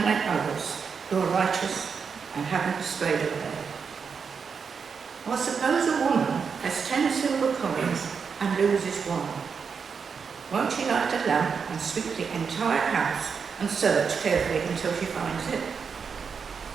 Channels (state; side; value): quieter; left; 6.0 dB